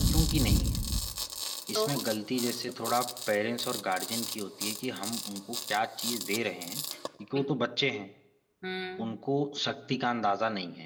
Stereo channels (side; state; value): both; identical; correlation 1.00